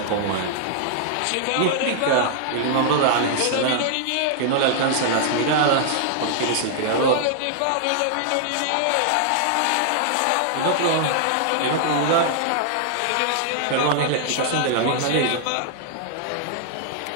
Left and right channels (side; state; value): both; different; correlation -0.01